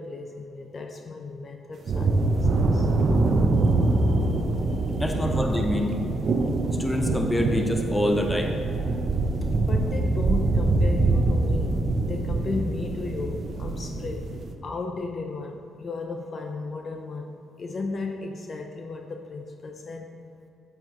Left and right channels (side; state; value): both; normal; correlation 0.80